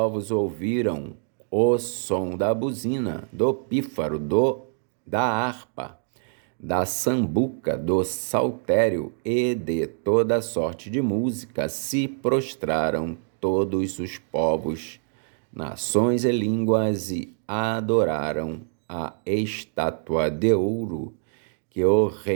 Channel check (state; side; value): silent; left; digital silence